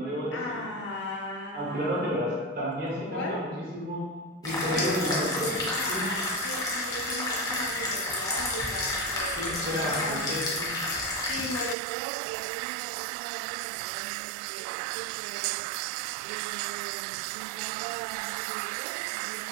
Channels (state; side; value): drops out; left; at 11.8 s